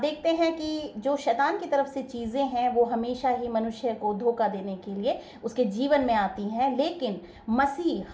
हैं कि जो शैतान की तरफ से चीज़ें हैं वो हमेशा ही मनुष्य को धोखा देने के लिए उसके जीवन में आती हैं, लेकिन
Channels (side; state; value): both; identical; correlation 1.00